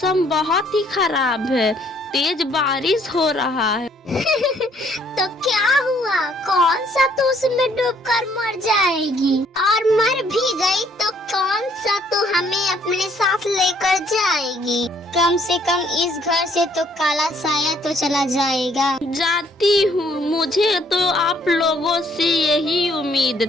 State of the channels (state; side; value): normal; both; correlation 0.65